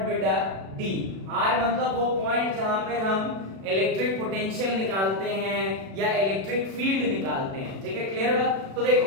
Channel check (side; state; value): left; late; 36 ms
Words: बेटा? d। r मतलब वो पॉइंट जहां पे हम इलेक्ट्रिक पोटेंशियल निकालते हैं या इलेक्ट्रिक फील्ड निकालते हैं। ठीक है, क्लियर बात? तो देखो